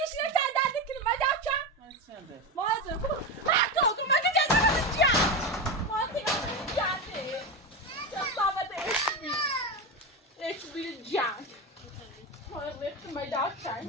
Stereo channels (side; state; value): both; normal; correlation 0.16